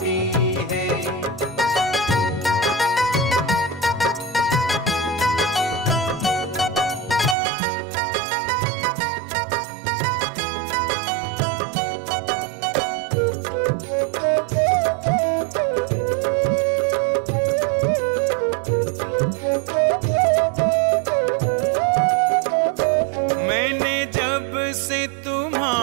है। मैंने जब से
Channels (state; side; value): drops out; left; at 7.4 s